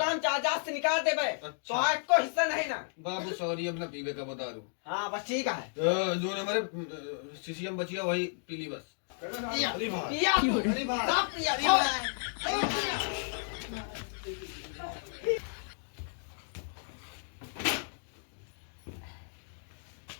हम चाचा से निकाल दे भाई अच्छा। तो आज को हिस्सा नहीं ना बाबू सॉरी अब ना पीवे का बता दूं हाँ बस ठीक है जो हमारे सीसीएम बची है वही पीली बस पिया अरे भाई पिया अरे भाई सब पिया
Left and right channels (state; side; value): silent; right; digital silence